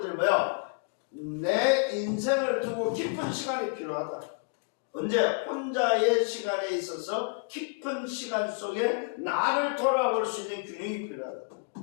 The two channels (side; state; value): right; quieter; 36.7 dB